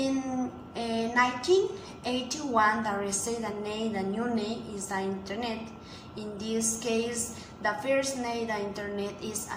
1981, the received the new name is the internet. In this case, the first name the internet is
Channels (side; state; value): both; identical; correlation 1.00